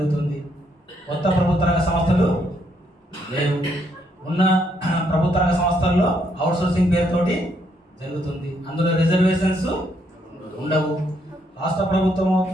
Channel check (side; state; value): both; normal; correlation 0.73